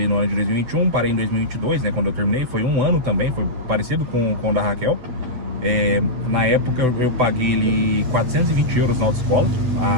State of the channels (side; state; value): left; late; 8.0 ms